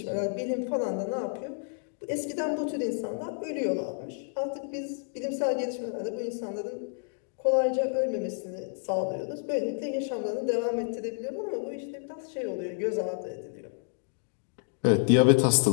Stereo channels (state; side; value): silent; right; digital silence